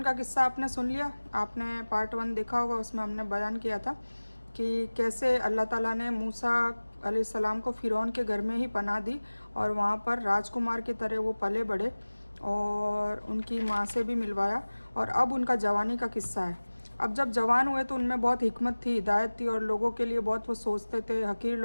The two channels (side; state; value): both; inverted; correlation -1.00